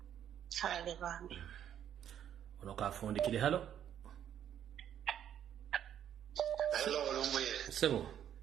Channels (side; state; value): left; quieter; 9.8 dB